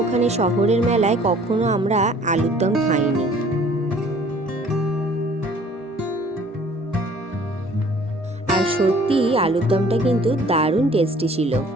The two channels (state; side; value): normal; both; correlation 0.54